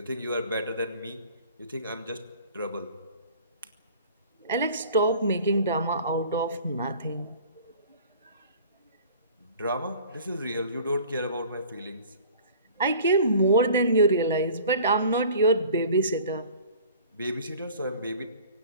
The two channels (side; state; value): both; inverted; correlation -0.46